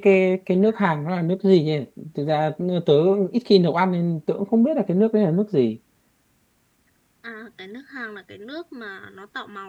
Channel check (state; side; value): identical; both; correlation 1.00